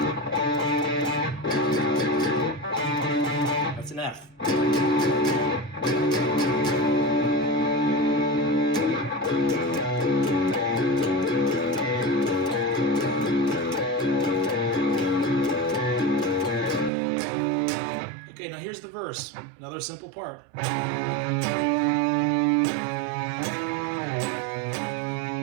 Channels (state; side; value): drops out; left; at 16.9 s